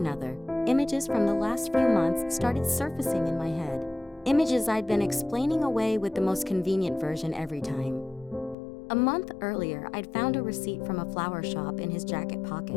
images from the last few months started surfacing in my head. Images I'd been explaining away with the most convenient version every time. A month earlier, I'd found a receipt from a flower shop in his jacket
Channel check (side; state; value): right; drops out; at 8.6 s